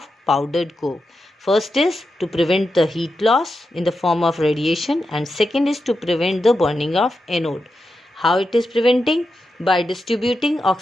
powdered coke. First is to prevent the heat loss in the form of radiation, and second is to prevent the burning of anode. How it is preventing? By distributing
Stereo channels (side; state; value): both; normal; correlation 0.88